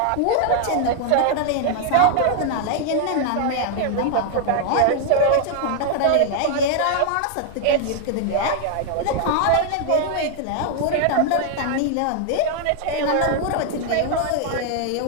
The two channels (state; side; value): different; both; correlation 0.00